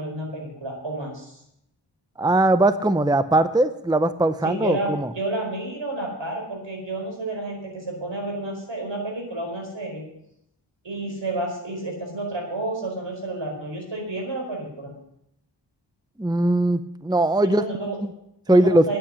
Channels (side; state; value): both; normal; correlation 0.58